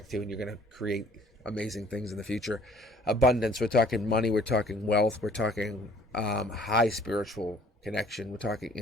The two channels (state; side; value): normal; both; correlation 0.56